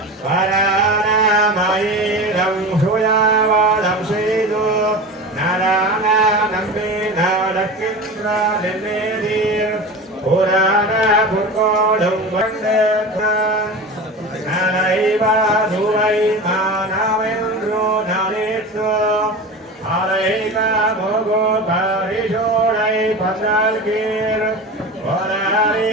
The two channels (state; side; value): normal; both; correlation 0.30